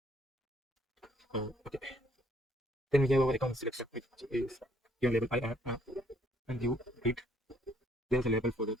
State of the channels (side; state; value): both; normal; correlation 0.66